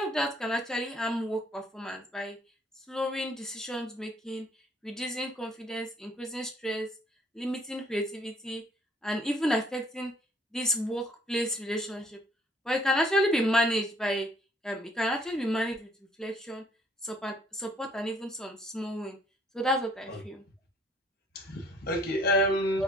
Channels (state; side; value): normal; both; correlation 0.61